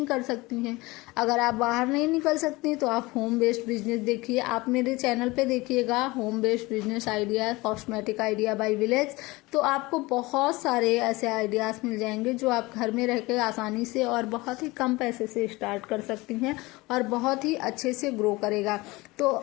कर सकती हैं। अगर आप बाहर नहीं निकल सकती तो आप होम बेस्ड बिजनेस देखिए। आप मेरे चैनल पे देखिएगा home based business idea, cosmetic idea by village, तो आपको बहुत सारे ऐसे आइडियाज मिल जाएंगे जो आप घर में रह के आसानी से और बहुत ही कम पैसे से स्टार्ट कर सकती हैं और बहुत ही अच्छे से ग्रो करेगा। तो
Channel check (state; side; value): quieter; right; 21.9 dB